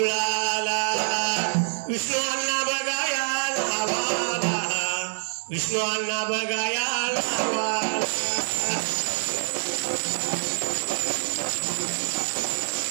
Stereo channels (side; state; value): left; silent; digital silence